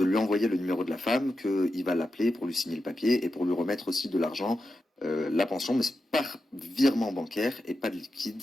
lui envoyer le numéro de la femme, qu'il va l'appeler pour lui signer le papier et pour lui remettre aussi de l'argent, la pension, mais c'est par virement bancaire et pas de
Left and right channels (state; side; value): normal; both; correlation 0.89